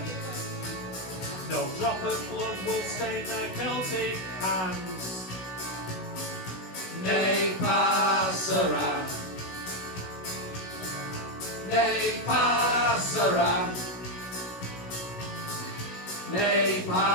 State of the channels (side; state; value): right; late; 16 ms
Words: No drop of blood will stain their Celtic hands. Ne passerà, ne passerà, ne